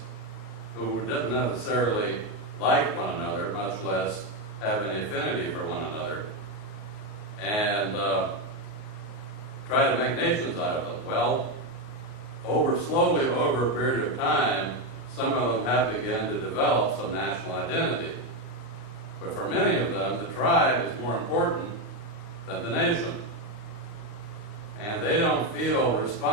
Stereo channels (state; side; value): late; right; 38 ms